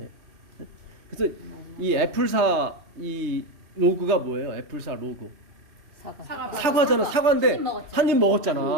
그래서 이 애플사 이 로고가 뭐예요? 애플사 로고 사과잖아. 사과인데 한 입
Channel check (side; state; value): left; late; 3.2 ms